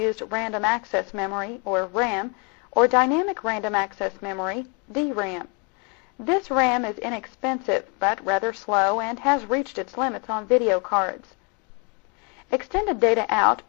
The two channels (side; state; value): right; quieter; 33.4 dB